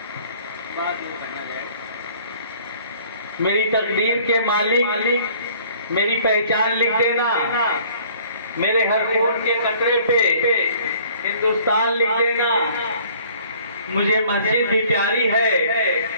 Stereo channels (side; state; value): both; inverted; correlation -0.54